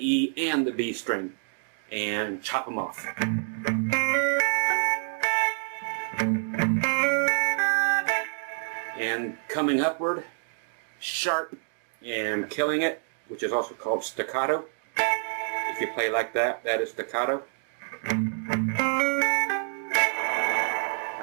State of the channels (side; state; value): left; silent; digital silence